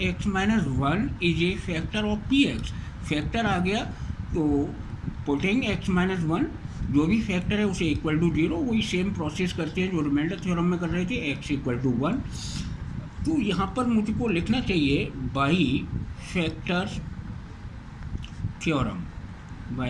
x-1 is a factor of px, factor आ गया तो पुटिंग x-1 जो भी फैक्टर है उसे इक्वल टू 0, वही सेम प्रोसेस करते हैं जो रिमाइंडर थ्योरम में कर रहे थे, x इक्वल टू 1। तो यहाँ पर मुझको लिखना चाहिए by factor theorem,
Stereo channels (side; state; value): both; identical; correlation 1.00